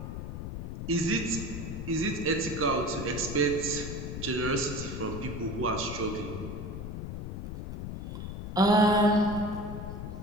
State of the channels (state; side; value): noise; left; rumble, 6 dB below the sound